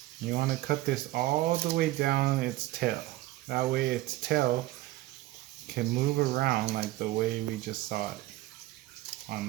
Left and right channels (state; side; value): quieter; left; 17.0 dB